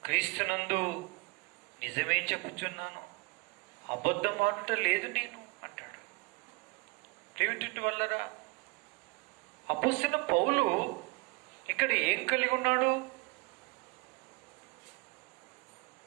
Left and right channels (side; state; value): left; quieter; 28.2 dB